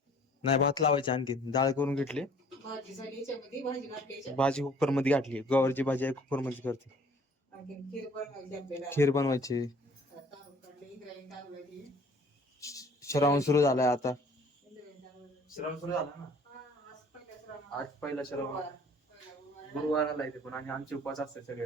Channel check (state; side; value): normal; both; correlation 0.54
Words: नाही, भात लावायची, आणखी डाळ करून घेतली. भाजी कुकर मध्ये घातली. गवारची भाजी आहे कुकर मध्ये करते. खीर बनवायची. श्रावण सुरू झालाय आता. श्रावण सुरू झाला ना आज, पहिला श्रावण गुरुवाराला येते पण. आणि आमचे उपास असतात